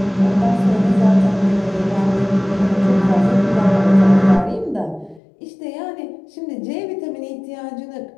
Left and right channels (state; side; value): drops out; right; at 5.2 s